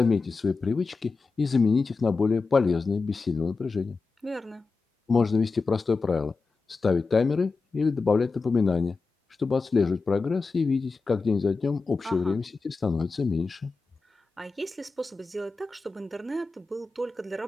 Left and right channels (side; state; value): right; quieter; 4.1 dB